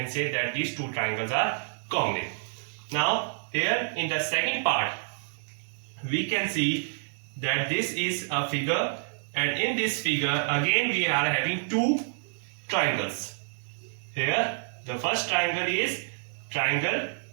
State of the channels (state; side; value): silent; left; digital silence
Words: say that these two triangles are congruent. Now here in the second part we can see that this is a figure, and in this figure again we are having two triangles. Here the first triangle is triangle